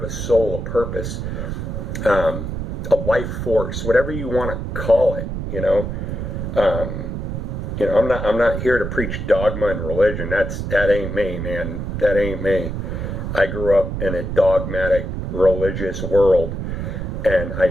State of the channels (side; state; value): right; noise; rumble, 4 dB below the sound